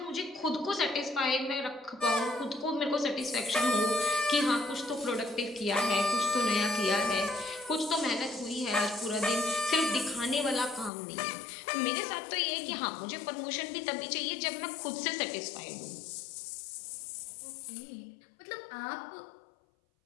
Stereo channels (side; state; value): right; drops out; at 10.9 s